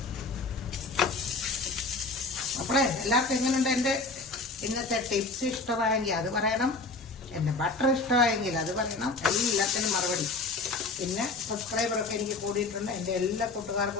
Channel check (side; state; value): right; quieter; 3.5 dB